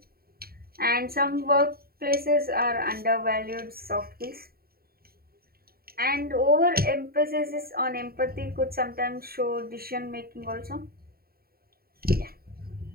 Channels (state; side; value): late; left; 0.44 ms